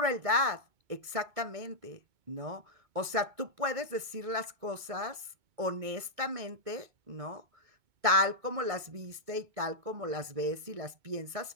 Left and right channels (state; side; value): late; left; 2.2 ms